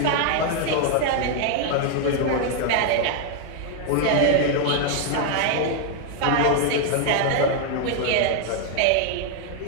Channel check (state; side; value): different; both; correlation 0.00